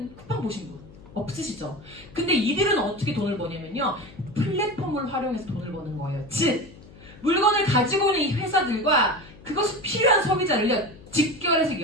쿠팡 보신 분 없으시죠? 근데 이들은 어떻게 돈을 버냐면요. 플랫폼을 활용해서 돈을 버는 거예요. 즉 물건을 가지고 오는 이 회사들과 그것이 필요한 소비자를요. 직결해서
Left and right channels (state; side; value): noise; left; hum, 21 dB below the sound